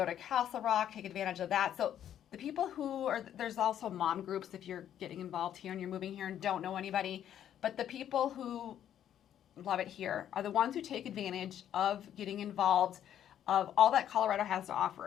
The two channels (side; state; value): right; quieter; 10.4 dB